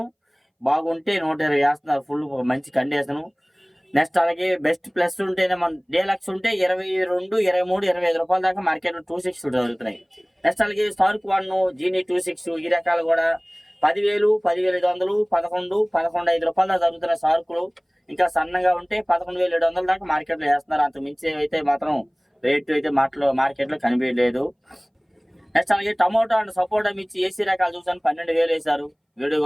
బాగుంటే 120 వేస్తున్నారు. ఫుల్ మంచి కండిషను. నెక్స్ట్ అలాగే బెస్ట్ ప్లస్ ఉంటేనే మన డీలక్స్ ఉంటే 22, 23, 25 రూపాయల దాకా మార్కెట్లో 26 జరుగుతున్నాయి. నెక్స్ట్ అలాగే స్టార్క్ 1, జీనీ 26 ఈ రకాలు కూడా 10,000, 10,500, 11, 11,500 రూపాయల దాకా జరుగుతున్నాయి సార్కులు. ఇంకా సన్నగా ఉంటే 11,700 దాకా మార్కెట్లో వేస్తున్నారు. అంత మించి అయితే మాత్రం రేటు అయితే మార్కెట్లో కనిపించలేదు. నెక్స్ట్ అలాగే టమోటా అండ్ సపోటా మిర్చి ఏసీ రకాలు చూసాను 12,000 వేశారు. వీడియో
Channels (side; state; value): both; identical; correlation 1.00